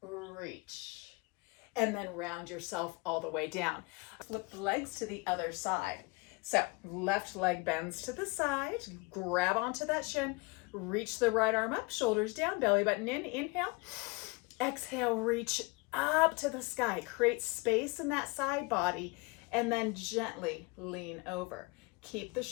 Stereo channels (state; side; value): quieter; right; 27.2 dB